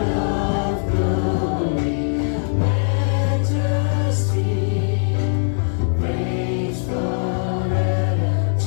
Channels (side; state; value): right; silent; digital silence